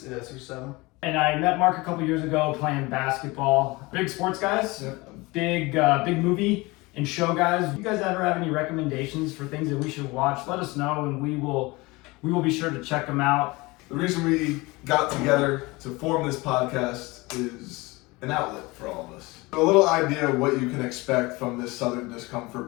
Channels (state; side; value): quieter; right; 23.2 dB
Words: Yeah, 6 or 7. And I met Mark a couple years ago playing basketball. Big sports guys, big movie and show guys. You guys ever have any recommendations for things that we should watch? Let us know, and we will be sure to check them out. The reason we got together to form this podcast is an outlet for all of us. A little idea of what you can expect from this Southern